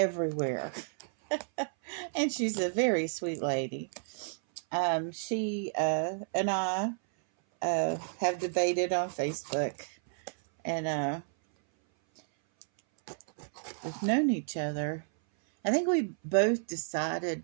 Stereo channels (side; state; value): left; silent; 57 dB below the other